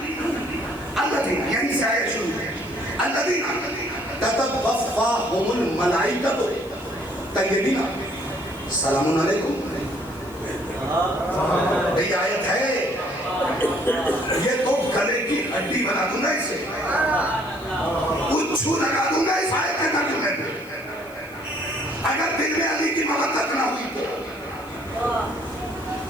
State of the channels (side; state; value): left; noise; hiss, 23 dB below the sound